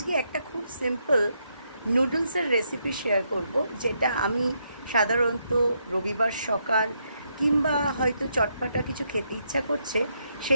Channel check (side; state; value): both; inverted; correlation -0.78